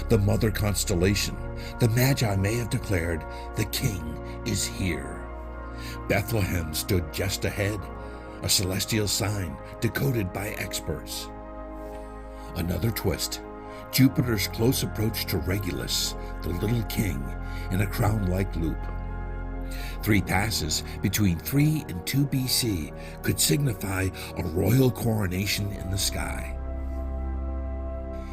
the mother constellation, the Magi may have declared, "The king is here." Bethlehem stood just ahead, a celestial sign decoded by experts. Another twist, Jupiter's close approach to Regulus, the little king, in a crown-like loop. 3 passes between 3 and 2 BC could signify a royal coronation in the sky.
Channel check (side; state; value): both; identical; correlation 1.00